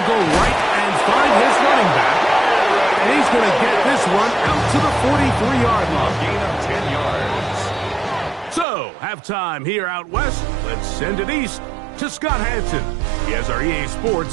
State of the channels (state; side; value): drops out; left; at 8.7 s